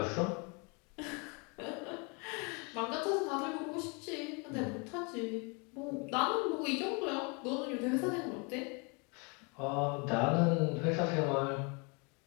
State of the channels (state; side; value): quieter; right; 32.0 dB